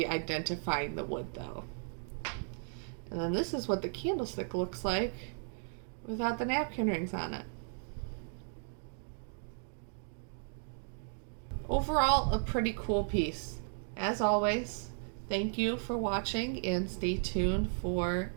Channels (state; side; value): silent; left; 54 dB below the other